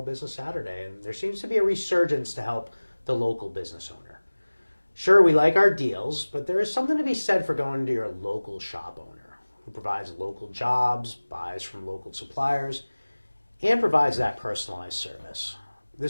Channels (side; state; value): both; inverted; correlation -1.00